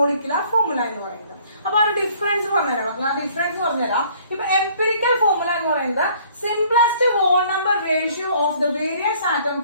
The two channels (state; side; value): inverted; both; correlation -0.58